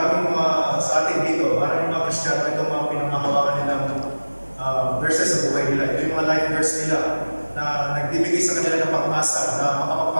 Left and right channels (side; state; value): both; inverted; correlation -1.00